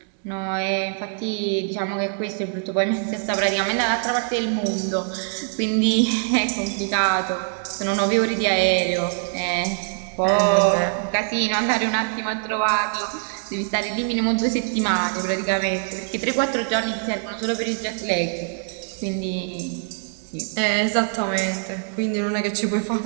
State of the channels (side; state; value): left; silent; 63 dB below the other